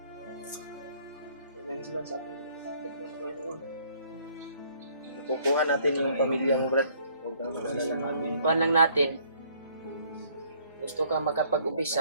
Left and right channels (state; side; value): inverted; both; correlation -0.61